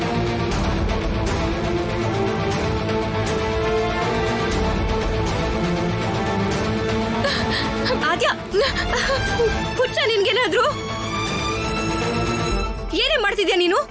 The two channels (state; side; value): identical; both; correlation 1.00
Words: ಆದ್ಯಾ, ಹುಚ್ಚ ನಿನ್ಗೇನಾದ್ರು? ಏನೇ ಮಾಡ್ತಿದ್ಯಾ ನೀನು?